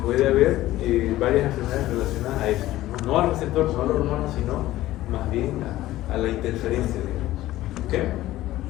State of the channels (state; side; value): quieter; right; 15.6 dB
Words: puede haber varias enfermedades relacionadas a esto, no al receptor, no a la hormona, sino más bien a la interferencia, digamos. ¿Okay?